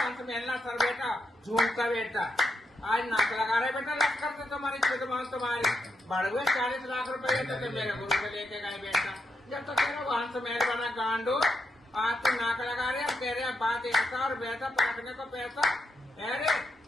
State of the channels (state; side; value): normal; both; correlation 0.83